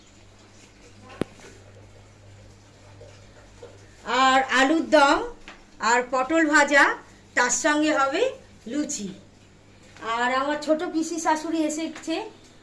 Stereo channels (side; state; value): both; identical; correlation 1.00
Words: আর আলুর দম, আর পটল ভাজা, তার সঙ্গে হবে লুচি। আর আমার ছোট পিসি শাশুড়ি এসেছে,